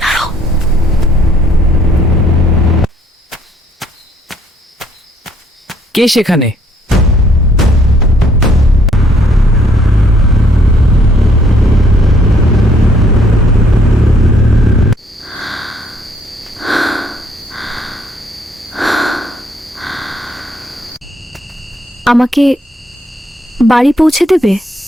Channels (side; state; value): both; normal; correlation 0.66